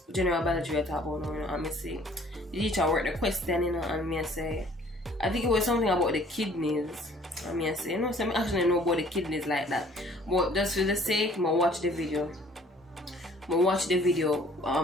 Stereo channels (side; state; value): both; normal; correlation 0.56